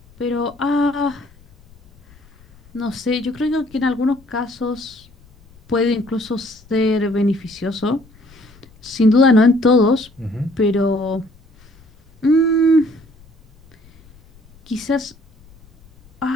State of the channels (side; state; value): left; noise; rumble, 27 dB below the sound